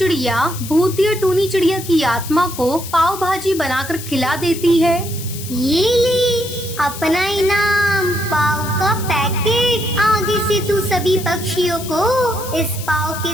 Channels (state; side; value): noise; left; hiss, 11 dB below the sound